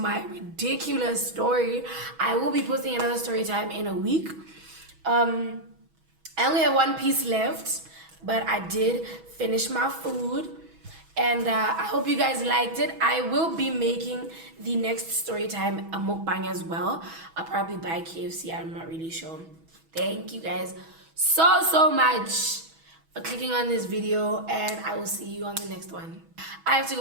ridiculous story. I will be posting another story time in a week. I only have one piece left, but I did finish my food. And I hope you guys liked it. I will be making the next story time a mukbang as well. I'll probably buy KFC. I'm not really sure. Thank you guys so much for clicking on this video, and I will see you on the next one. I have to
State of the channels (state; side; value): late; left; 6.2 ms